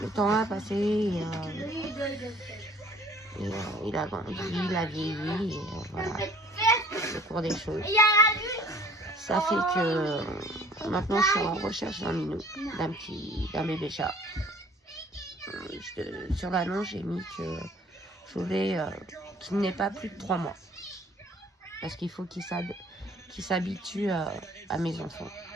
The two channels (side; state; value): both; normal; correlation 0.53